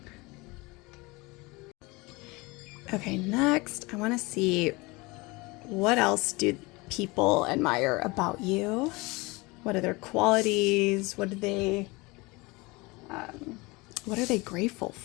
Okay, next I want to see what else do people admire about you. What are their qualities? What are they grateful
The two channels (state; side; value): quieter; right; 24.3 dB